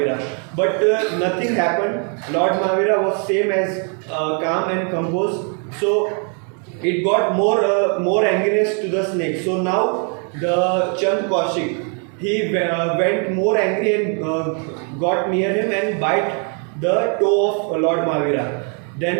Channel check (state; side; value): quieter; left; 39.8 dB